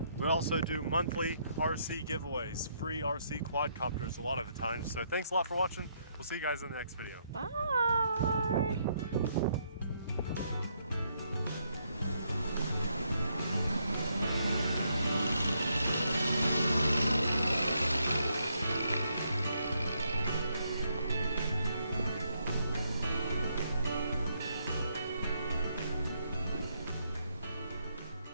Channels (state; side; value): inverted; both; correlation -0.75